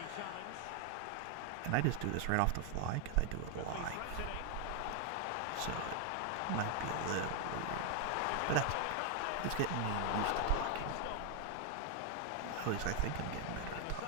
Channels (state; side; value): different; both; correlation 0.00